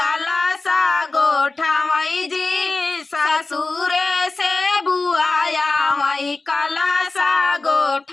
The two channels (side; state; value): right; quieter; 3.5 dB